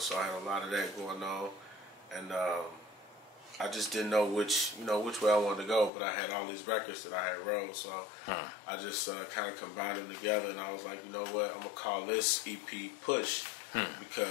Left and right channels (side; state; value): right; drops out; at 5.9 s